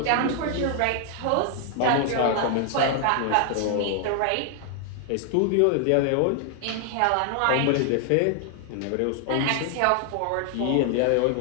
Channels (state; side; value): different; both; correlation 0.00